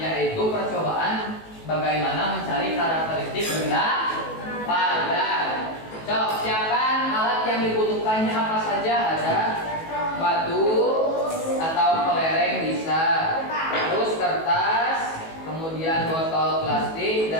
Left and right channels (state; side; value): late; right; 18 ms